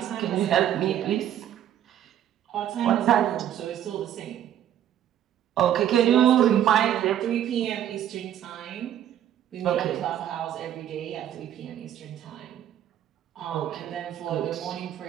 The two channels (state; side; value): quieter; left; 10.9 dB